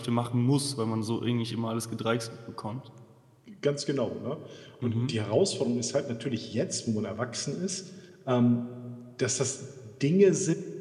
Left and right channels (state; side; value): identical; both; correlation 1.00